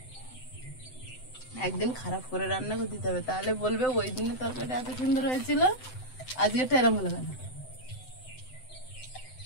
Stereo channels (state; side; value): late; right; 7.8 ms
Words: একদিন খারাপ করে রান্না করে দিতে হবে, তাহলে বলবে ওই দিনের তরকারিটা এত সুন্দর হয়েছিল, আজকেরটা এরম হলো কেন।